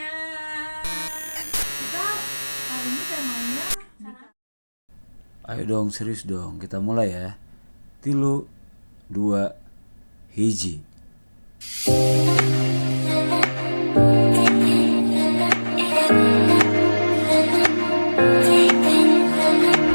Kita hari ini temanya Ayo dong, serius dong, kita mulai ya. 3, 2, 1.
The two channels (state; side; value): inverted; both; correlation -1.00